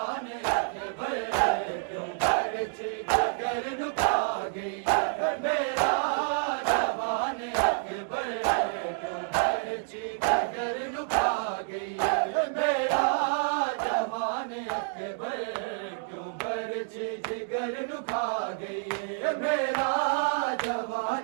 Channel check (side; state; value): left; silent; digital silence